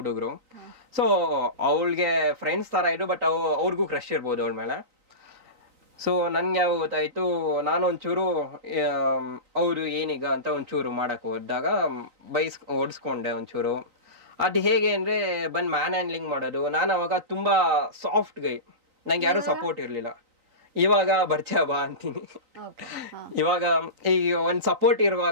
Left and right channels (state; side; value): late; left; 3.9 ms